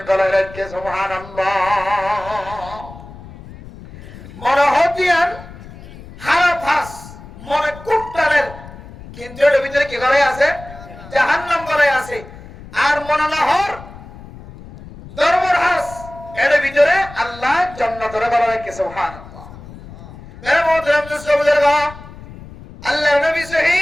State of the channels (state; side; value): noise; left; rumble, 17 dB below the sound